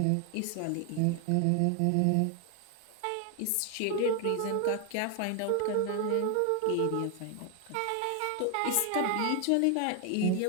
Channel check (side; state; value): both; different; correlation 0.00